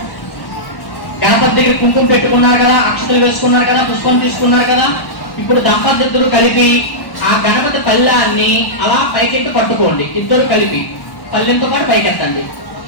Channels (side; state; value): right; late; 1.1 ms